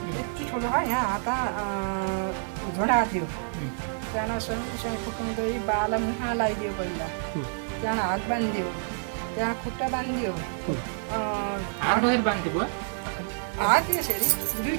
यति ठुलो है, यहाँ हात झोडाएको थियो। त्यहाँ सँगसँगै फुकाउँदै बाला मुखमा लगाइदियो पहिला, त्यहाँ हात बाँधिदियो, त्यहाँ खुट्टा बाँधिदियो, हात यसरी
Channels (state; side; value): silent; left; digital silence